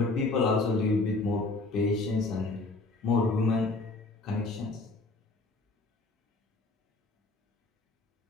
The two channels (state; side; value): quieter; right; 3.3 dB